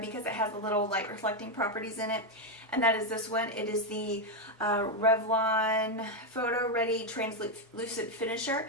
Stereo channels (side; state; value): both; normal; correlation 0.04